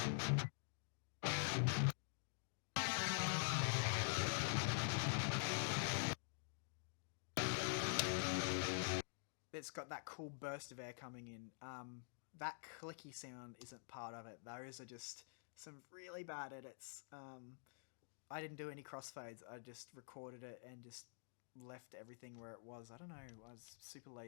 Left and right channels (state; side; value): silent; right; digital silence